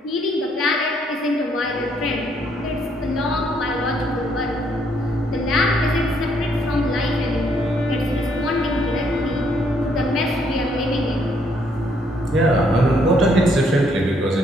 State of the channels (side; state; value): both; normal; correlation 0.70